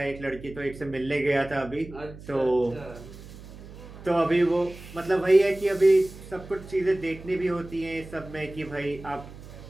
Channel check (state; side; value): noise; right; hum, 16 dB below the sound